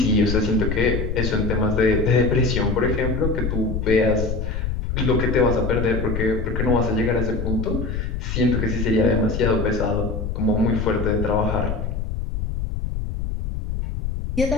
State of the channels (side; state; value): left; noise; rumble, 3 dB below the sound